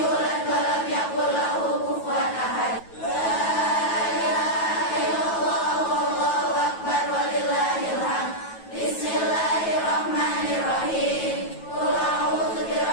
wa lam yakul lahu kufuwan ahad.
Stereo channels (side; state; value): right; late; 9.2 ms